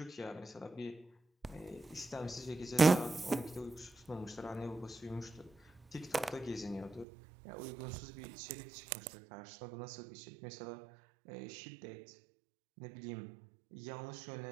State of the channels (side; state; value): left; drops out; at 7.1 s